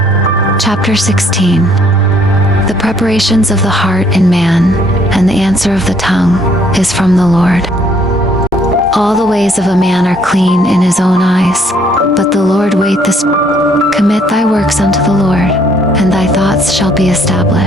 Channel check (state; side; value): normal; both; correlation 0.65